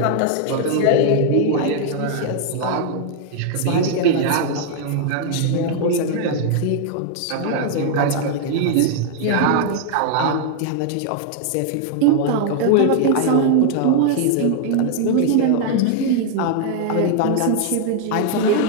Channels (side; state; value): both; different; correlation 0.00